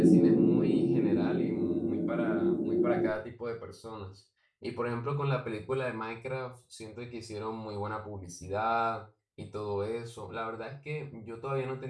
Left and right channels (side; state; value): both; identical; correlation 1.00